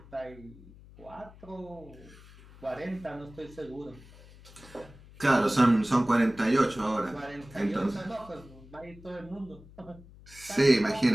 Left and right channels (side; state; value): left; noise; hum, 21 dB below the sound